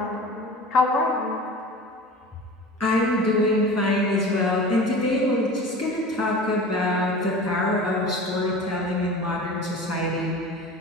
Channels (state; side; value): normal; both; correlation 0.37